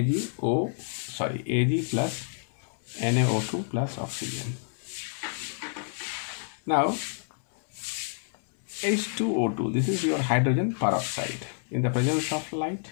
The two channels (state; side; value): silent; right; 59 dB below the other